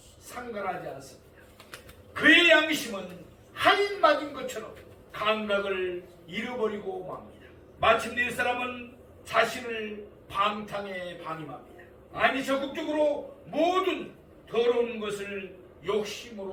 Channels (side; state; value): both; identical; correlation 1.00